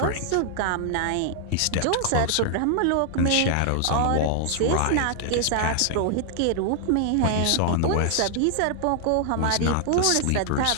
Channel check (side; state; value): both; different; correlation 0.00